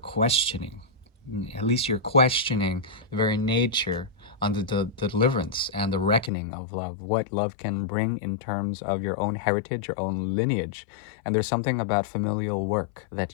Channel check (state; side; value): drops out; right; at 6.3 s